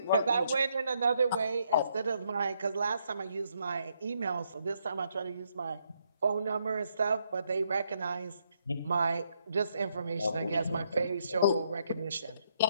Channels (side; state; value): both; inverted; correlation -0.75